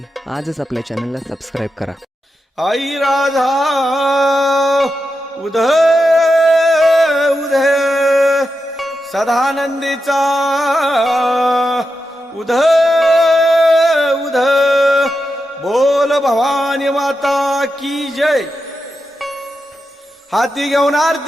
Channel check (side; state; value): both; normal; correlation 0.88